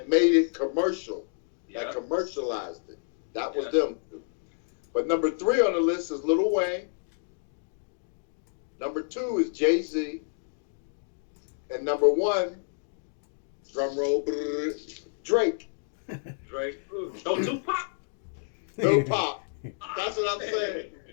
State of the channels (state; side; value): silent; right; digital silence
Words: made it commercial. Yeah. That commercialized it. That was them. But number 3 on the list is Lil Wayne. Number 2 is Jay-Z. And number 1, drum roll, Drake. Drake. No Tupac. No Pop. That's what I'm saying.